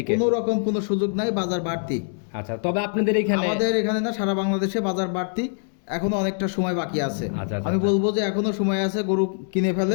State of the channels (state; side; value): silent; right; digital silence